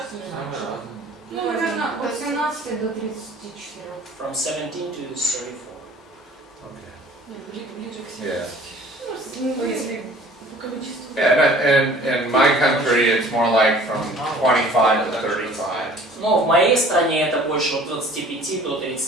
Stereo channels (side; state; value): both; normal; correlation 0.49